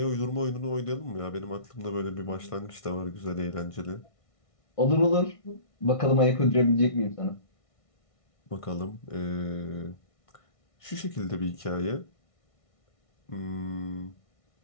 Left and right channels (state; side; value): late; right; 1.6 ms